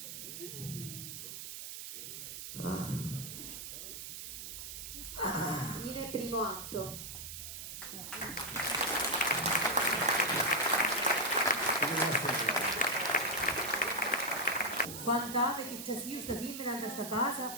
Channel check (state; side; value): noise; right; hiss, 8 dB below the sound